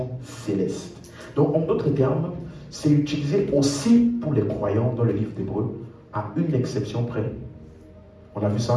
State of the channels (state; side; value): identical; both; correlation 1.00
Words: céleste. Donc, en d'autres termes, c'est utilisé aussi pour les croyants dans le livre d'Hébreu, à une exception près. On a vu